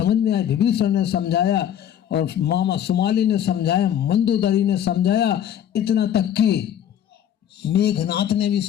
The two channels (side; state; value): right; quieter; 10.1 dB